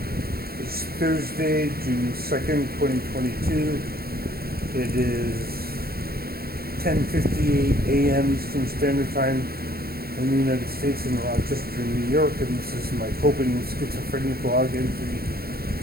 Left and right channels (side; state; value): left; late; 0.44 ms